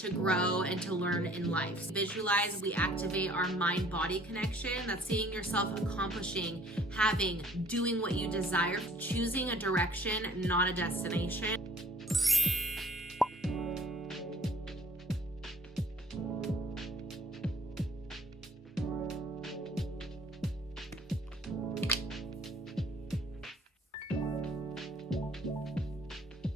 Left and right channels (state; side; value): normal; both; correlation 0.57